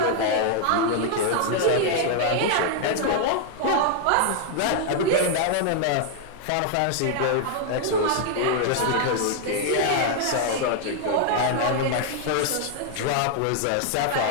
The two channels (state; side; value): different; both; correlation 0.00